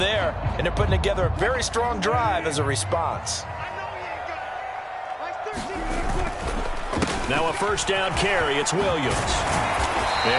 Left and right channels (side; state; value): both; identical; correlation 1.00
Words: and they're putting together a very strong drive as a response. Now a first down carry. It's Williams.